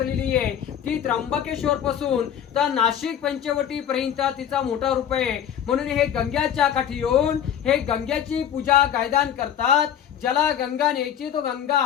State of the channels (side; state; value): right; quieter; 9.5 dB